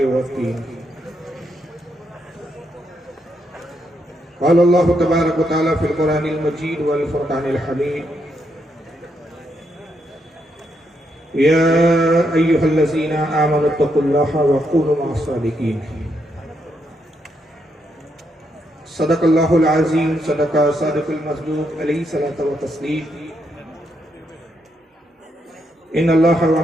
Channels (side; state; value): both; normal; correlation 0.79